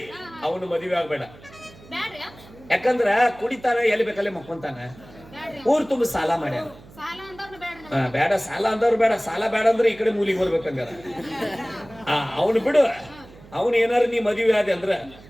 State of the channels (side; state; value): right; noise; hum, 22 dB below the sound